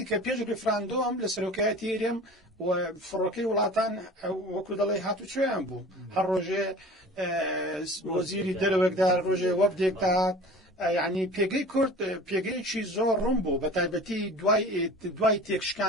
کە پێش ڕیفراندۆم لە سەرۆکایەتی هێرێم و فڕۆکەی وڵاتان وەکو دەڵێ هاتوچۆیان بوو هەر ڕۆژێ وەزیری دەرەوەکدا ڕۆژێ وەفدێک داهات یعنی پێگەی کورد پێگەیەکی زۆر ڕوون بوو بە تایبەتی دوای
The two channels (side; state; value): both; normal; correlation 0.41